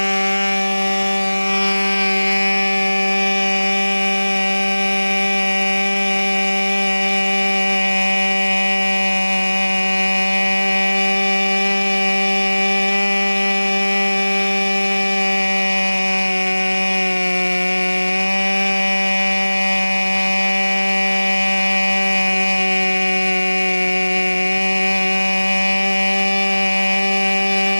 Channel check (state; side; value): inverted; both; correlation -1.00